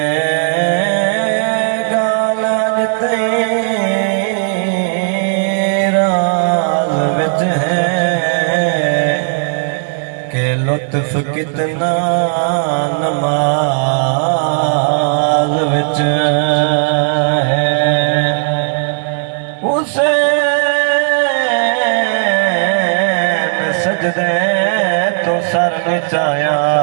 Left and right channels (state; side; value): silent; left; digital silence